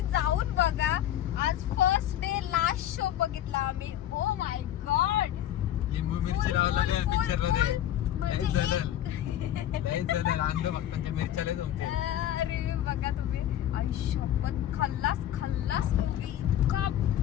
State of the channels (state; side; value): quieter; right; 11.7 dB